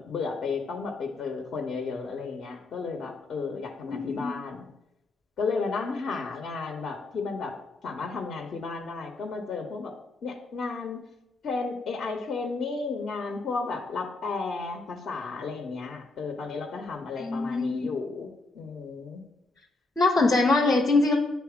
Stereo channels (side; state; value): right; quieter; 3.3 dB